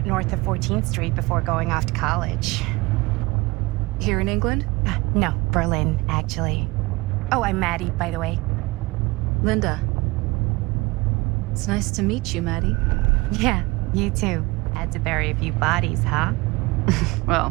north of 14th Street before going off to college. Here in England? No, Berlin, actually. Oh, I'm Maddie, by the way. Linda. It's nice to meet you, Maddie. Yeah, you too. Had to bury a few bodies, huh?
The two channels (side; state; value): left; quieter; 23.4 dB